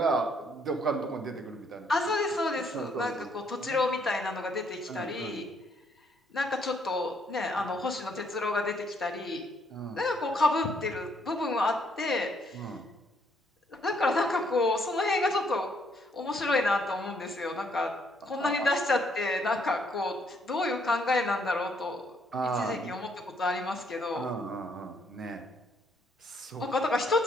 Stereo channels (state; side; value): normal; both; correlation 0.69